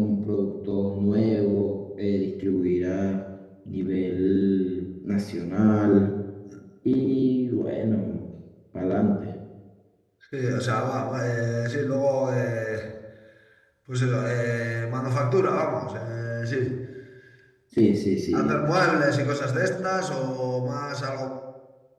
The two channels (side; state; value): both; identical; correlation 1.00